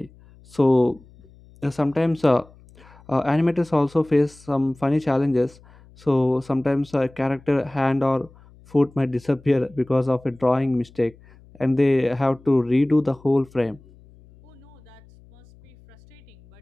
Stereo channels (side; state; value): left; noise; hum, 25 dB below the sound